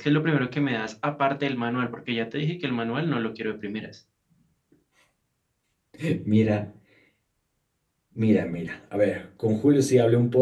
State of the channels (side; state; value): both; identical; correlation 1.00